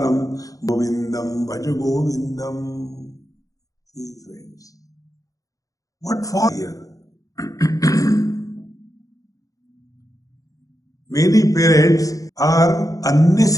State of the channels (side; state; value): right; late; 0.17 ms